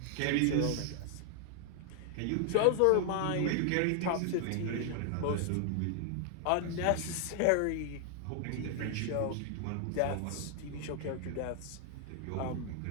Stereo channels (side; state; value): both; different; correlation 0.00